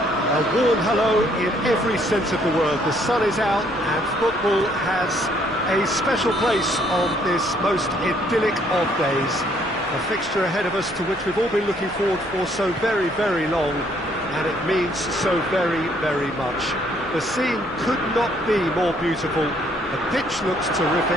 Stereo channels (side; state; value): both; normal; correlation 0.66